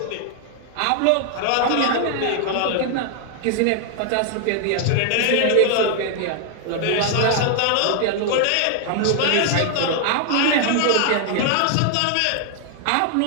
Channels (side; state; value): both; different; correlation 0.00